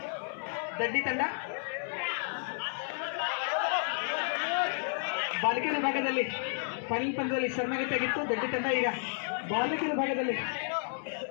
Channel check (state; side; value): silent; right; 57 dB below the other